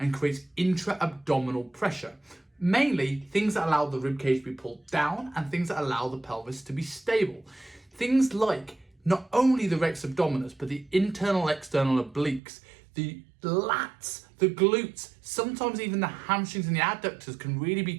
creates intra-abdominal pressure. Mainly things that allow the ribcage to be pulled down and things that allow the pelvis to be stable. Things like not only the rex abdominis, but the internal external obliques, the lats, the glutes, sometimes even the hamstrings and the adductors can really be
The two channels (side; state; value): left; drops out; at 12.4 s